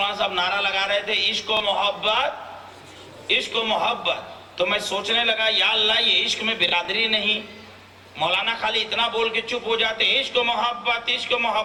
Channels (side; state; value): both; identical; correlation 1.00